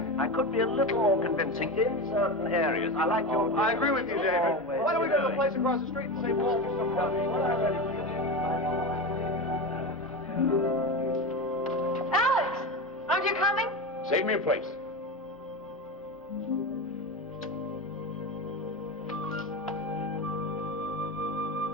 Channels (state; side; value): normal; both; correlation 0.22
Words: I could be a little more convincing in certain areas. I like your... I agree with you, David. Why don't we go to the place across the street and save Walter some money? Alex, aren't you coming? Save me a place.